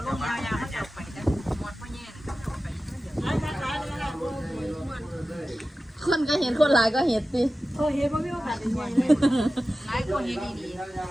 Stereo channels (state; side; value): normal; both; correlation 0.94